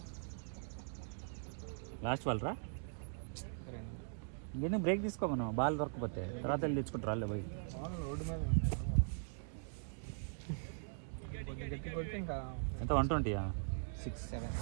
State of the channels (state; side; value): silent; left; digital silence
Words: లాస్ట్ బాల్ రా. ఇంకేందుకు బ్రేక్ తీసుకో, మనం బాల్ దొరకపోతే తర్వాత వెళ్ళి తెచ్చుకుంటారు వాళ్ళే పోయి. ఎంత 120? 6, 7